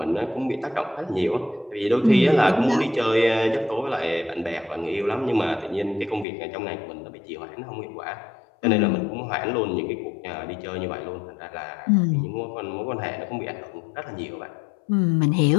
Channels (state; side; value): drops out; right; at 6.2 s